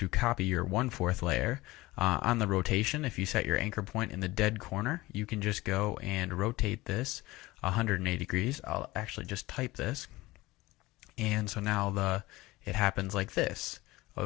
copy your 1/4 layer. On the rotation, if you set your anchor point in the dead corner, you can just go and rotate this 180 degrees. I'll actually just type this. And so now it happens like this.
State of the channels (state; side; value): quieter; right; 19.8 dB